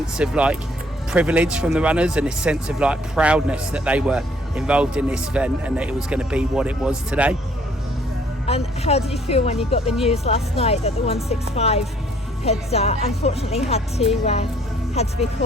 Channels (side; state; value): both; normal; correlation 0.62